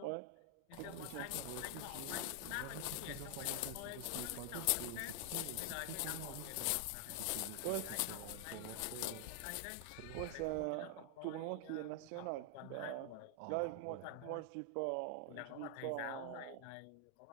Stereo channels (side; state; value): both; different; correlation 0.00